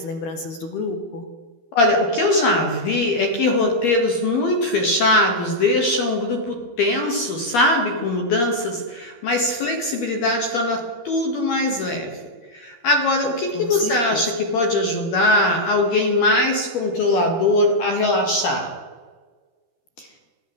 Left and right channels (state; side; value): late; right; 13 ms